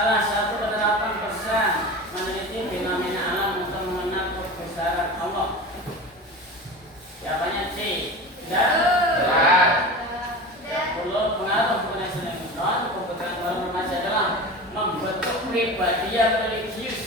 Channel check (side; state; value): both; normal; correlation 0.31